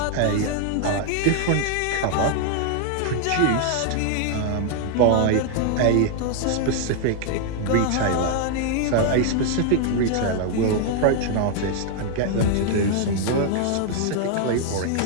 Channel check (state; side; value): different; both; correlation 0.00